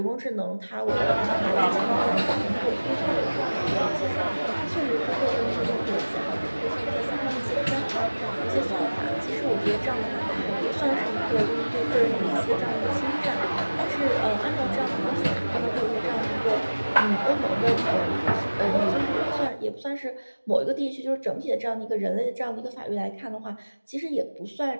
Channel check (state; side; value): inverted; both; correlation -1.00